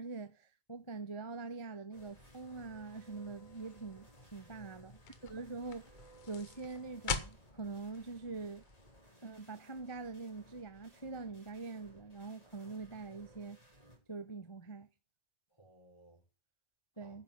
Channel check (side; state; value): right; late; 2.2 ms